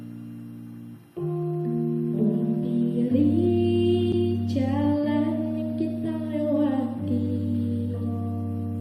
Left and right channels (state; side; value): identical; both; correlation 1.00